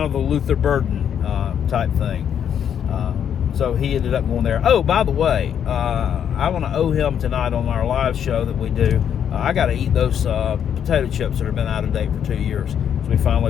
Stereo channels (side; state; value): right; quieter; 8.8 dB